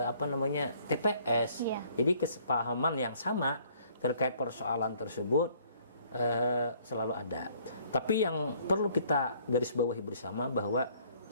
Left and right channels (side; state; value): both; inverted; correlation -0.60